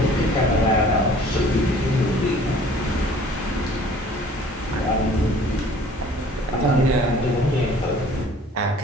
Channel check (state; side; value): normal; both; correlation 0.51